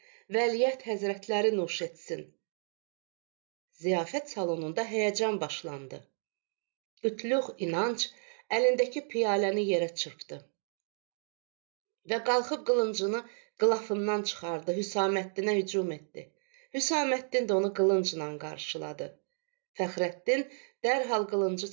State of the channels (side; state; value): left; silent; 56 dB below the other